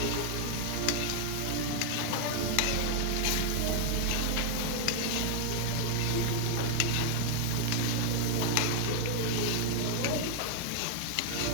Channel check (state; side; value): different; both; correlation 0.00